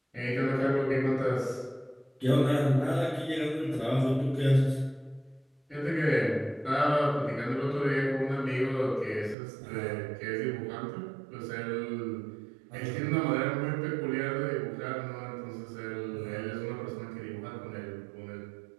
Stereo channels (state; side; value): drops out; left; at 9.3 s